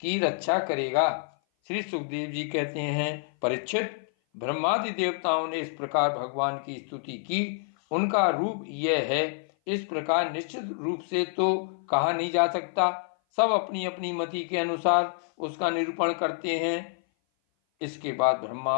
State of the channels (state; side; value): silent; right; 56 dB below the other